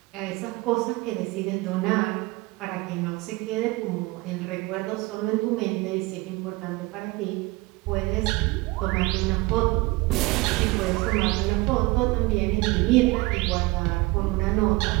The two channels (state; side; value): quieter; left; 22.5 dB